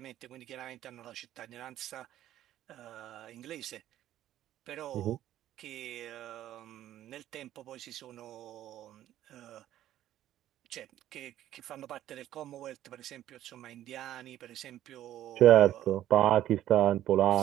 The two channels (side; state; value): left; quieter; 12.7 dB